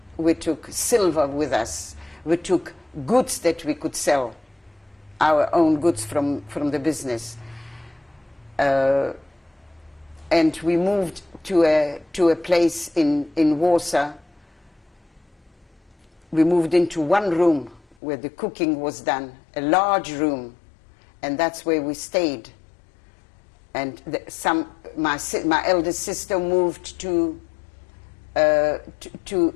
we took silver with us, we took goods that we could sell, our own goods from the business. And we moved to a place in Warsaw. We moved into one room where the cooking was done, a large room, and that's where we stayed. And my eldest sister moved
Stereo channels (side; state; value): right; drops out; at 17.9 s